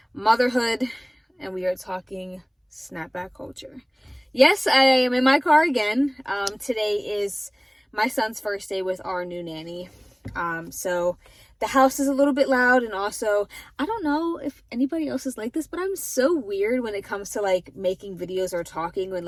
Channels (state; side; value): identical; both; correlation 1.00